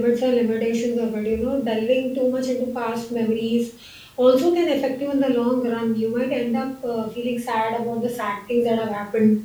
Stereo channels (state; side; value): identical; both; correlation 1.00